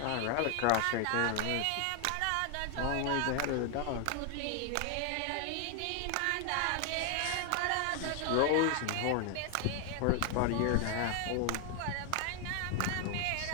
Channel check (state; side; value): different; both; correlation 0.00